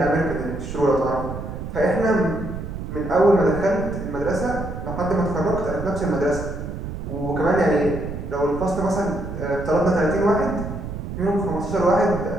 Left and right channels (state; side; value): noise; right; rumble, 7 dB below the sound